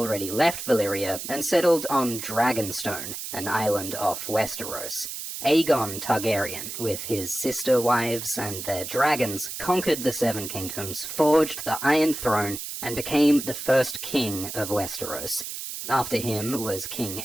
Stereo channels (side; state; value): right; noise; hiss, 7 dB below the sound